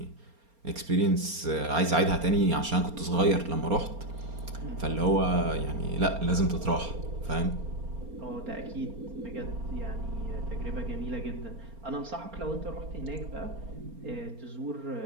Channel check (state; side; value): late; left; 4.3 ms